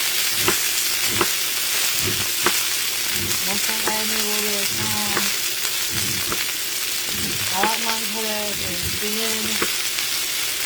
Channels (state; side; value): identical; both; correlation 1.00